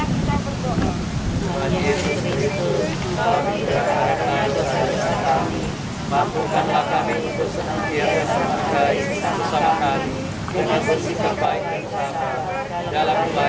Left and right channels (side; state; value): both; identical; correlation 1.00